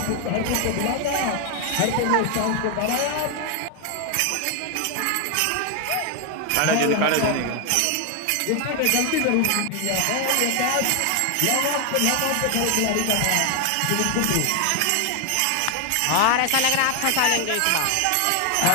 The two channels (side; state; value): both; different; correlation 0.01